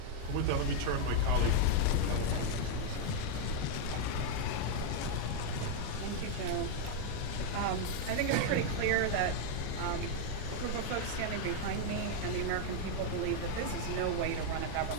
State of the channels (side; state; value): both; different; correlation 0.00